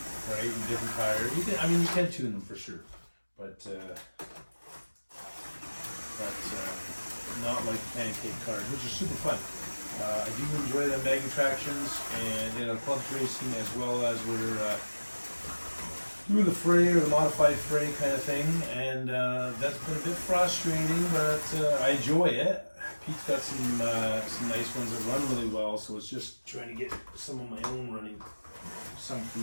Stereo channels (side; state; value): both; inverted; correlation -1.00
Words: right? And different tires. You can, I mean, you can tune them for sure, but not like the pancake cars, which are super fun. I do enjoy the magnet tractions and clubs racing, as well as we're doing the fray or the modified fray kind of thing, and that's been a bit frustrating, but I enjoy it. Pete's got some nice ones that run really well, so it's just trying to get some of my own running, some for